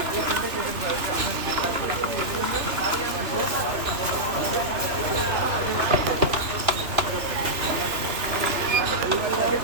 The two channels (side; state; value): left; late; 3.0 ms